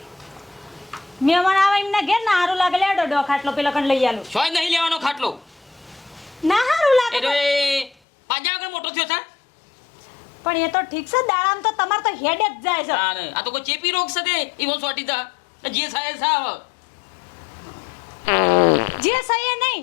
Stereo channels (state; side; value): drops out; right; at 8.0 s